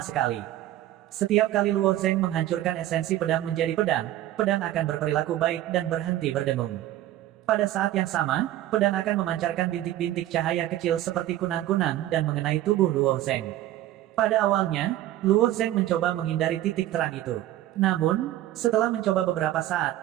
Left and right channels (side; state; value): left; quieter; 13.9 dB